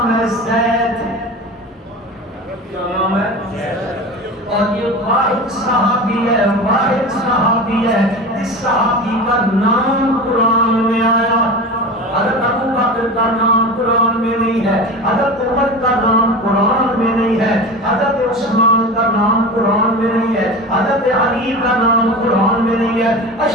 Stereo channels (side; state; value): both; normal; correlation 0.30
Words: ہے زید. کیا نام ہے؟ اور یہ واحد صحابی ہے, واحد صحابی ہے. اس صحابی کا نام قرآن میں آیا. حضرت ابو بکر کا نام قرآن میں نہیں ہے, حضرت عمر کا نام قرآن میں نہیں ہے, حضرت عثمان کا نام قرآن میں نہیں ہے, حضرت علی کا نام قرآن میں نہیں ہے,